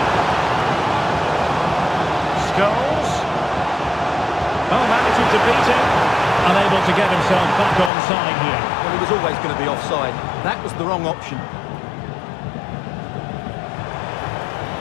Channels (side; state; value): right; drops out; at 7.9 s